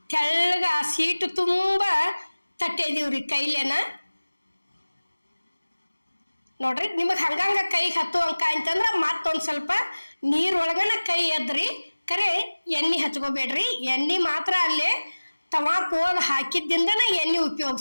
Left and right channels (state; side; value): inverted; both; correlation -1.00